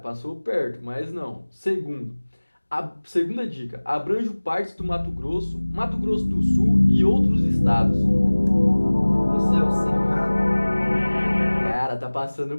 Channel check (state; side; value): inverted; both; correlation -1.00